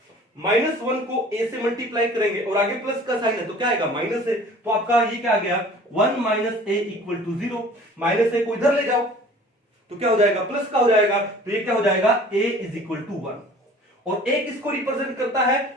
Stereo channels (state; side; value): normal; both; correlation 0.47